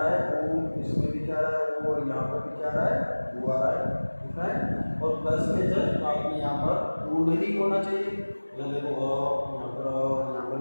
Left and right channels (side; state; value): both; inverted; correlation -1.00